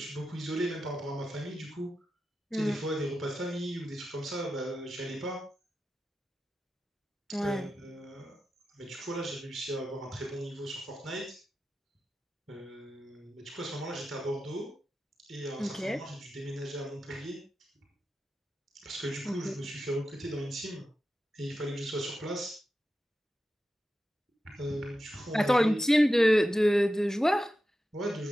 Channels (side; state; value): both; normal; correlation 0.91